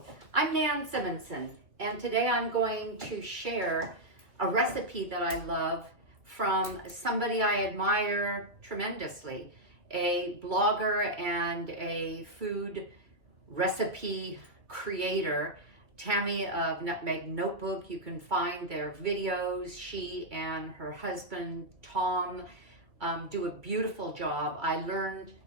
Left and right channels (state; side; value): late; left; 2.3 ms